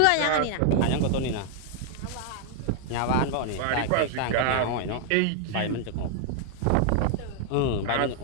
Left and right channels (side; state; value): both; different; correlation 0.00